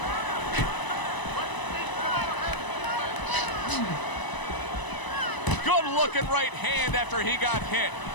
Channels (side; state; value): right; late; 1.0 ms